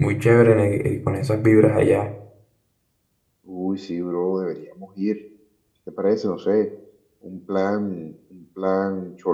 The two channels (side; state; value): both; identical; correlation 1.00